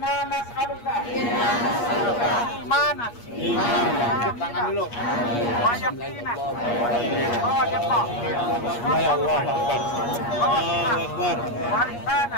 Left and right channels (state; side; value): late; right; 8.4 ms